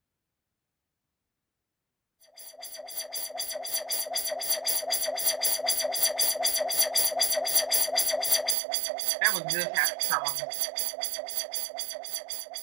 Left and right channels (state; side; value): drops out; left; at 8.6 s